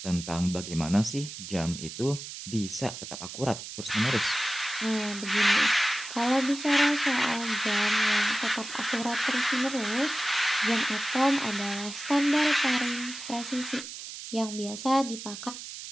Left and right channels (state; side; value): noise; right; hiss, 10 dB below the sound